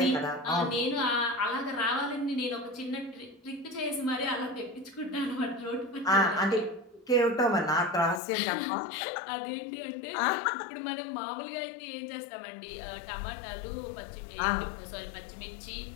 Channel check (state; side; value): drops out; right; at 8.2 s